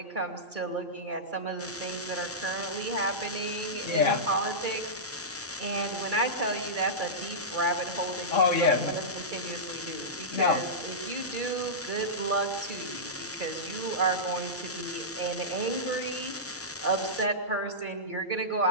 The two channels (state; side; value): normal; both; correlation -0.15